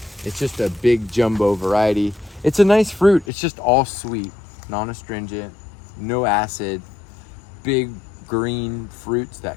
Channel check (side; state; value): right; drops out; at 3.2 s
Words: It's just a big jumbo variety. It's a nice fruit. It's just all sweet, non-astringent, no acid, big green fruits